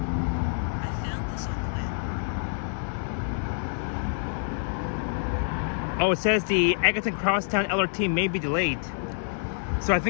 I found this on the web. Oh, it says the Eglinton Crosstown LRT may be delayed. So I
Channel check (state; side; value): silent; right; digital silence